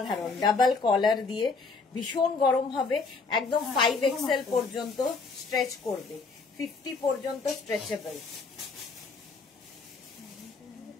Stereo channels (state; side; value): quieter; right; 4.3 dB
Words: ডাবল কলার দিয়ে, ভীষণ গরম হবে। একদম 5XL পর্যন্ত স্ট্রেচ করবে, 50 পর্যন্ত স্ট্রেচেবল,